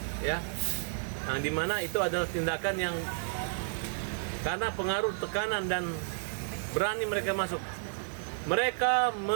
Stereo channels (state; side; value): silent; left; 57 dB below the other